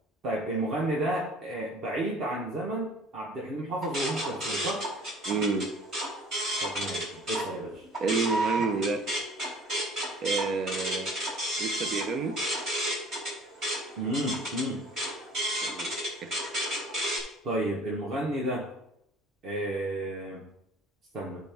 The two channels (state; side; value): normal; both; correlation 0.49